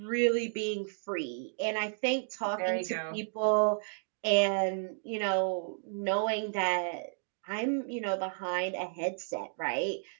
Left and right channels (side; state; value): left; silent; digital silence